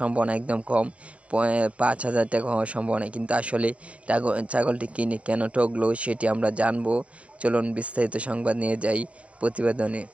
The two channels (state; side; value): late; left; 0.064 ms